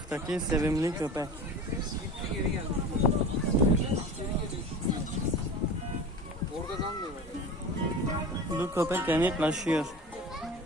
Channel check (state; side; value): normal; both; correlation 0.34